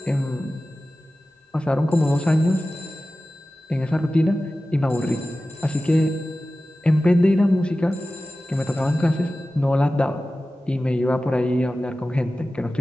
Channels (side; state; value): both; normal; correlation 0.95